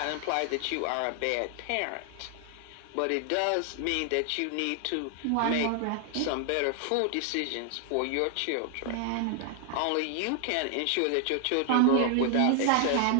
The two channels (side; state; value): both; different; correlation 0.00